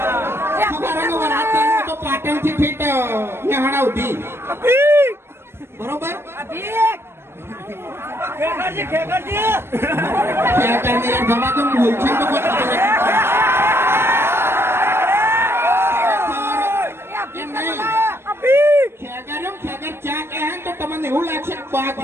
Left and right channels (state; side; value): late; left; 0.12 ms